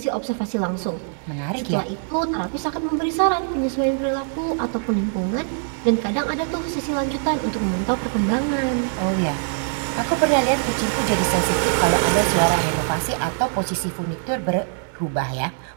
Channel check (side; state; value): left; silent; digital silence